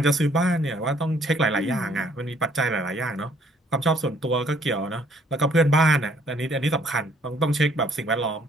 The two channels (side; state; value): both; normal; correlation 0.63